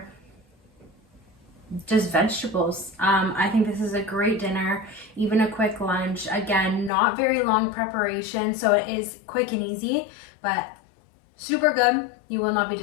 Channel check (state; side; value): drops out; right; at 6.9 s